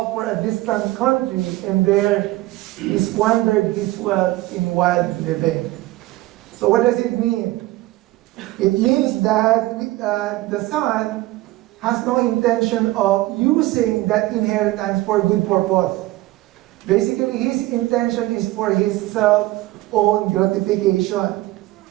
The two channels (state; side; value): quieter; left; 18.0 dB